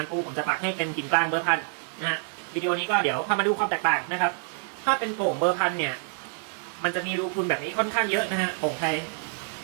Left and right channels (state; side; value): silent; left; 56 dB below the other